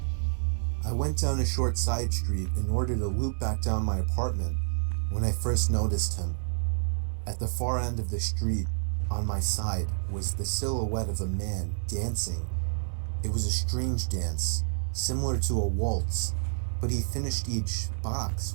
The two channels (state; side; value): silent; left; 59 dB below the other